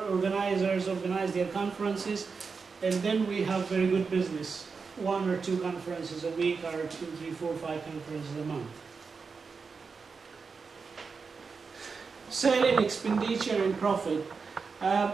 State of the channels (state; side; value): quieter; left; 5.0 dB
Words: organizers organize their conferences, and then we have very good business. 1 or 2 conferences a week, or 2, 3, 4, 5 conferences a month. Selling, expenditure, and profit.